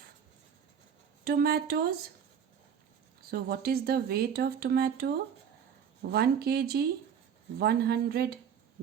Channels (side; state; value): left; quieter; 7.9 dB